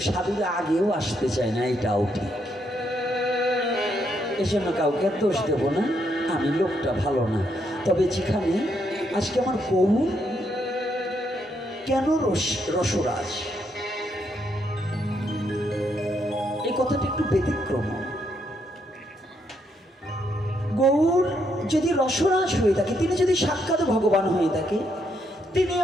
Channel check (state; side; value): normal; both; correlation 0.76